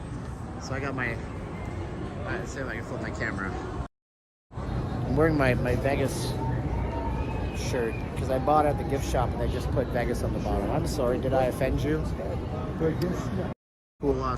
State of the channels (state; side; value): identical; both; correlation 1.00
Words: So I got my, let's see if I can flip my camera. I'm wearing my Vegas shirt because I bought it at the gift shop and they just put Vegas on the bottom. I'm sorry, did I offend you? Cool